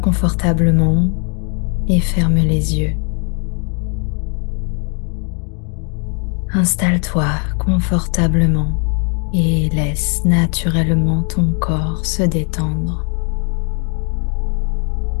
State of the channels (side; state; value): right; quieter; 38.6 dB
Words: et ferme les yeux. Installe-toi confortablement et laisse naturellement ton corps se détendre.